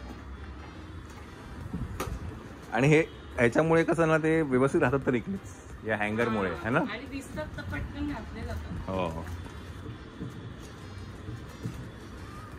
आणि हे ह्याच्यामुळे कसं ना, ते व्यवस्थित राहतात तरी या हँगरमुळे, है ना. हो,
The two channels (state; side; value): identical; both; correlation 1.00